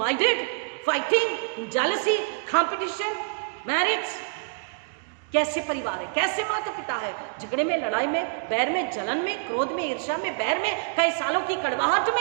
fighting, jealousy, competition, marriage. कैसे परिवार है? कैसे माता पिता है? झगड़े में, लड़ाई में, बैर में, जलन में, क्रोध में, ईर्ष्या में, बैर में, कई सालों की कड़वाहट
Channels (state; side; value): silent; left; digital silence